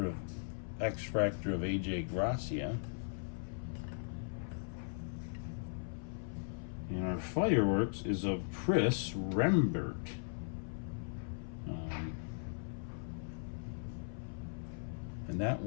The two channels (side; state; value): right; silent; 52 dB below the other